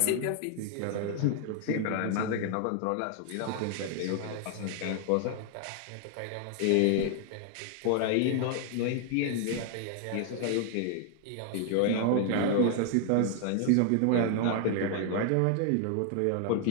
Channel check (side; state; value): both; different; correlation 0.00